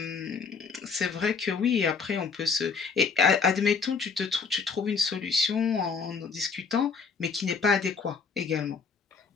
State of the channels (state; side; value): quieter; right; 5.3 dB